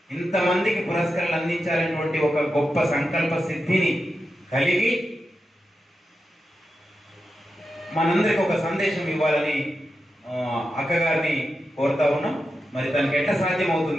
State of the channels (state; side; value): normal; both; correlation 0.89